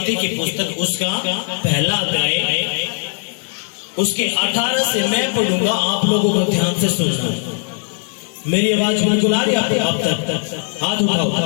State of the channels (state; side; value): silent; right; 58 dB below the other